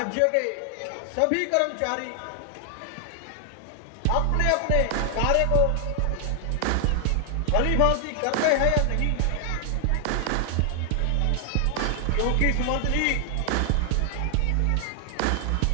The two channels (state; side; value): different; both; correlation 0.00